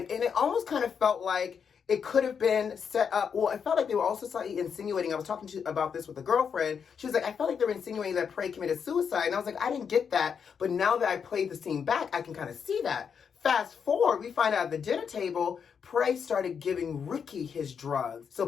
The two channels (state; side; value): quieter; right; 6.8 dB